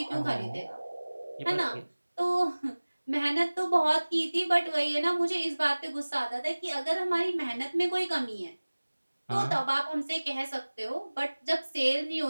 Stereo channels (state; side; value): inverted; both; correlation -1.00